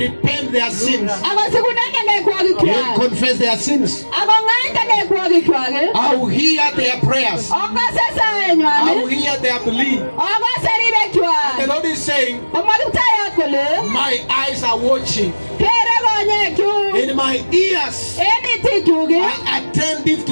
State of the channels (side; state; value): both; inverted; correlation -1.00